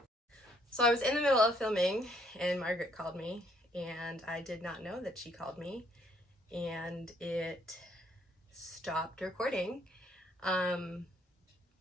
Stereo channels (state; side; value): normal; both; correlation 0.67